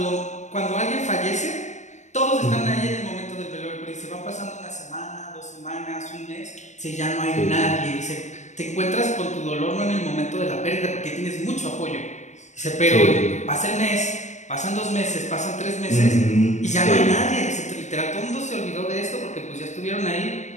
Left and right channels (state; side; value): late; right; 0.34 ms